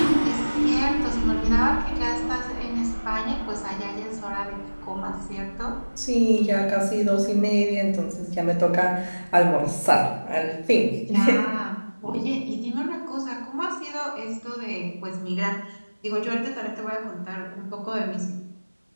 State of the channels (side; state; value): both; inverted; correlation -1.00